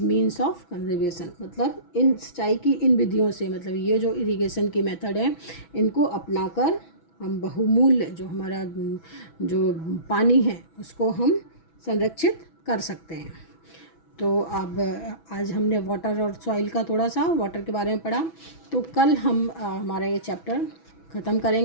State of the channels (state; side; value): late; right; 6.1 ms